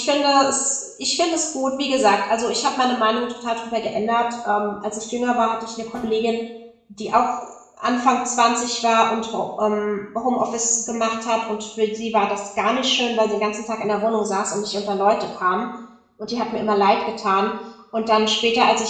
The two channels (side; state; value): both; identical; correlation 1.00